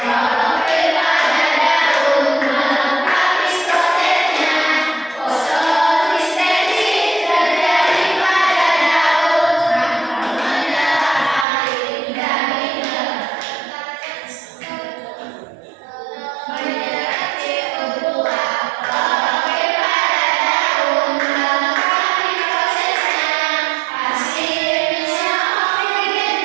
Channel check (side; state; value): left; drops out; at 11.5 s